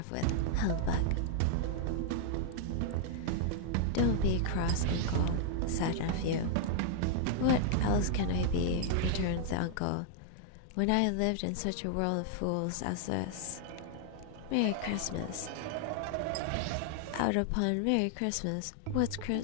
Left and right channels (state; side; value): different; both; correlation 0.00